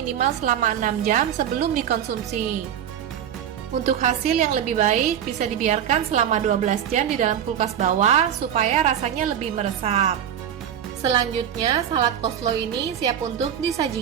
selama 6 jam sebelum dikonsumsi. Untuk hasil yang lebih baik, bisa dibiarkan selama 12 jam di dalam kulkas bawah supaya rasanya lebih meresap. Selanjutnya, salad coleslaw ini siap untuk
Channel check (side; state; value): left; quieter; 9.3 dB